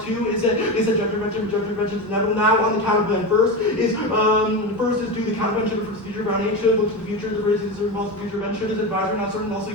2 is that they said judge intervention is inevitable. Now on the counterplan. First is do the countervention for future ground aid should look to the future. The race is involved future event should is advisory not certain also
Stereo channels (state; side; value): normal; both; correlation 0.20